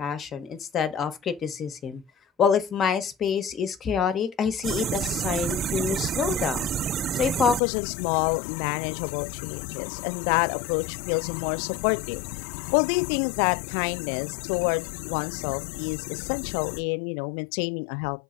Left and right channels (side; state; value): right; drops out; at 7.6 s